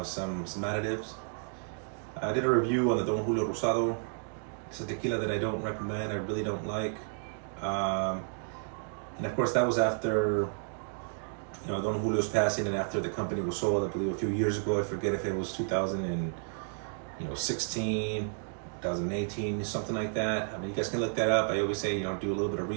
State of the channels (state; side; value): silent; left; 57 dB below the other